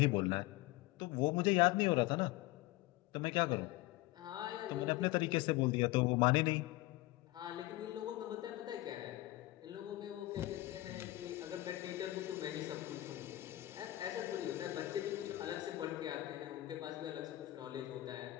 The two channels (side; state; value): right; quieter; 17.8 dB